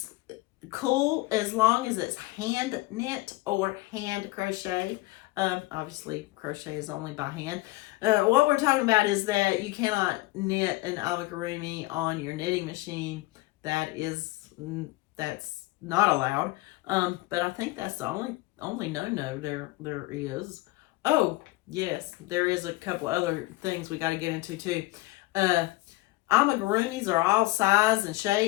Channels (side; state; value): right; quieter; 20.4 dB